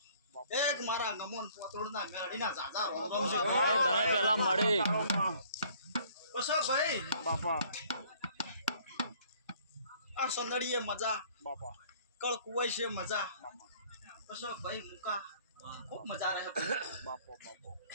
એક મારા નમોન પોતળના મેળીના જાજા રોમ છે ભાઈ તને પેલા મળી કશો ભાઈ બાપા આ સંદડીએ મજા બાપા કળ કુવાઈ છે મજા મામા કશો ભાઈ મુકા ખૂબ મજા રહે ભાઈ બાપો બાપો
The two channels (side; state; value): both; inverted; correlation -0.57